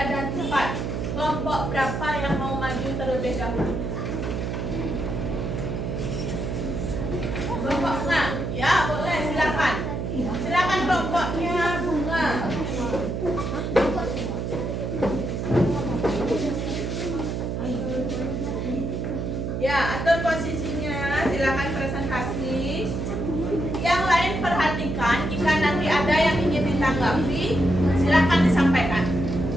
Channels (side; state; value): right; noise; hum, 3 dB below the sound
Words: dan 4. Kelompok berapa yang mau maju terlebih dahulu? Kelompok bunga? Ya, boleh, silakan. Silakan kelompoknya bunga. Ya, atur posisinya, silakan presentasi. Yang lain perhatikan, jika nanti ada yang ingin ditanggapi, silakan disampaikan.